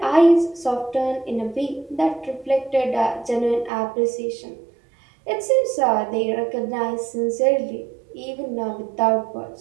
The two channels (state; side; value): drops out; left; at 3.7 s